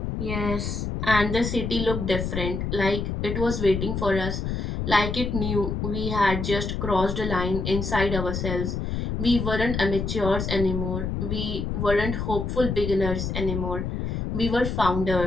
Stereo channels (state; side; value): noise; left; rumble, 2 dB below the sound